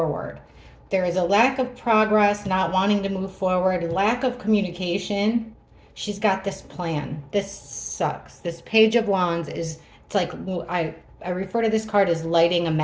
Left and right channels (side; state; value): both; identical; correlation 1.00